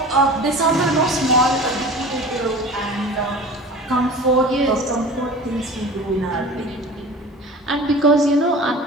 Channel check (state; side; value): normal; both; correlation 0.38